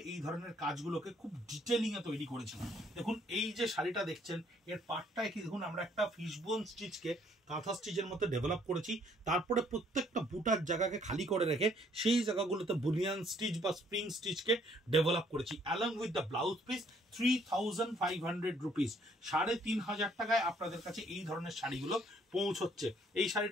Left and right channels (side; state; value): both; normal; correlation 0.64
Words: এই ধরনের কাজগুলোকে খুব ডিটেলিং এ তৈরি করেছিলাম। দেখুন, এই যে শাড়িটা দেখছেন, এর পাটটায় কি দেখুন আমরা একটা ফিশবোন স্টিচকে কাঁথা স্টিচের মতো ডেভেলপ করেছি। তারপরে প্রত্যেকটা বুটার জায়গাকে খালি করে রেখে সেই জায়গাগুলোতে বুলিয়ান স্টিচ বা স্প্রিং স্টিচকে ডেভেলপ করেছি। Along with the blouse piece 3500 rupees, 3500 টাকায় আপনাদের কাছে এই ধরনের শাড়িগুলো পৌঁছচ্ছে। এই